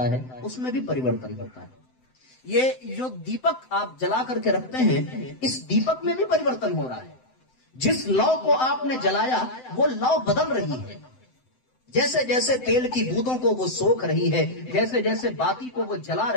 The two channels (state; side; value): late; right; 7.8 ms